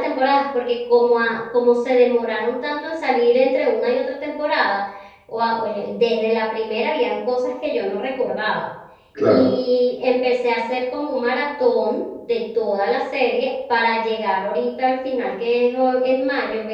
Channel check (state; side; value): identical; both; correlation 1.00